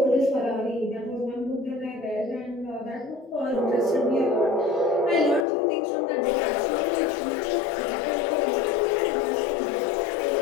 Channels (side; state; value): right; drops out; at 5.5 s